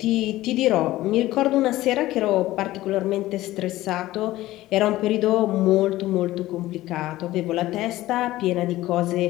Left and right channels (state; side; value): quieter; right; 16.4 dB